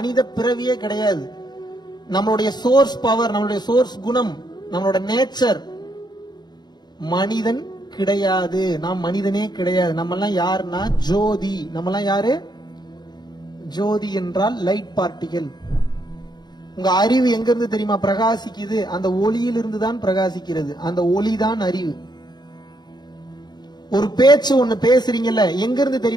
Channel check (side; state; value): right; late; 0.20 ms